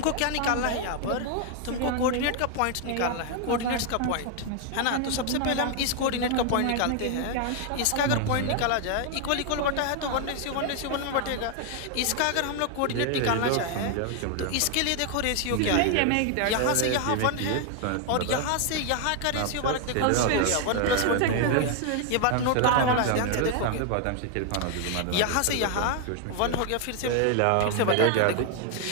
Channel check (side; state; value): both; different; correlation 0.00